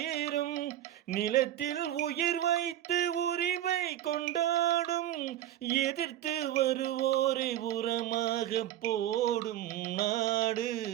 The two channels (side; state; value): left; quieter; 12.4 dB